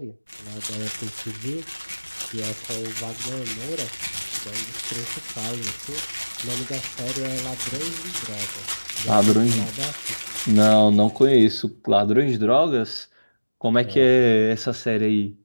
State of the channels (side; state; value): both; inverted; correlation -1.00